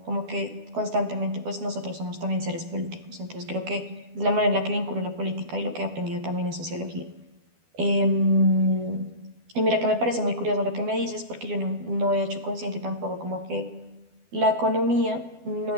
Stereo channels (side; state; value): left; late; 12 ms